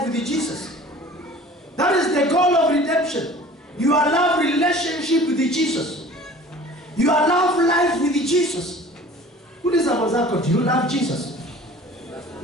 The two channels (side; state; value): both; normal; correlation 0.46